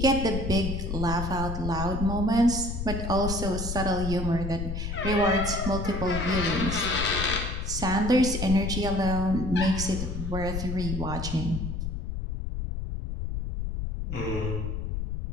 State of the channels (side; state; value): left; noise; rumble, 4 dB below the sound